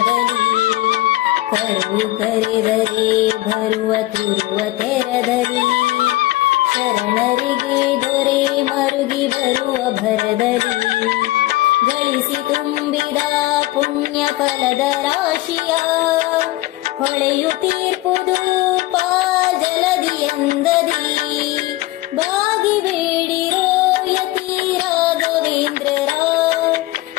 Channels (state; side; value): quieter; right; 18.1 dB